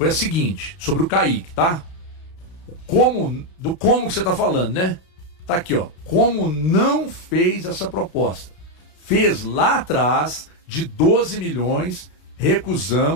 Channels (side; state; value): right; late; 33 ms